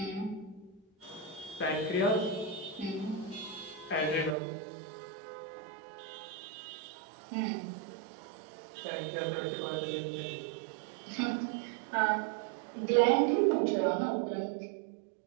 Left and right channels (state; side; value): drops out; left; at 4.4 s